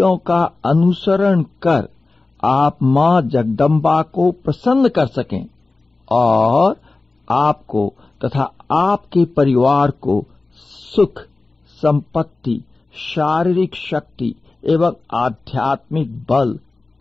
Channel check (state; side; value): quieter; right; 3.4 dB